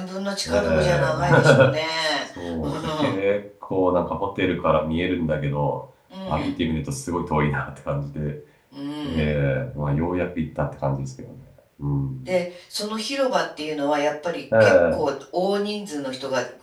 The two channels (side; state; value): both; identical; correlation 1.00